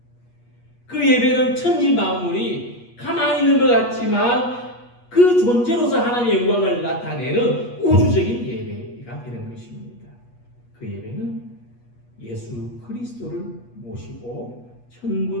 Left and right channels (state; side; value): late; right; 8.3 ms